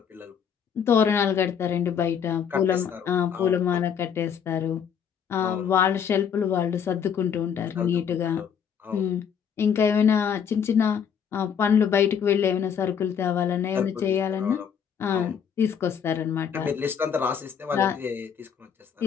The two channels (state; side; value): quieter; right; 7.7 dB